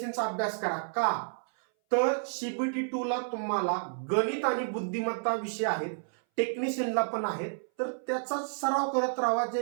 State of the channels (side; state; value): left; silent; 58 dB below the other